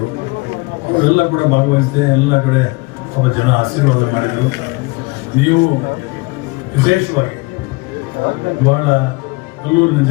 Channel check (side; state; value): right; quieter; 26.2 dB